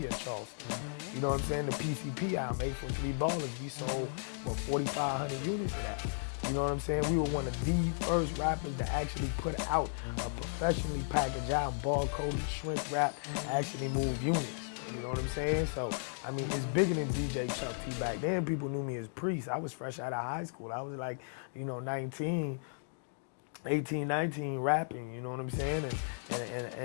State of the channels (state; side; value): silent; right; digital silence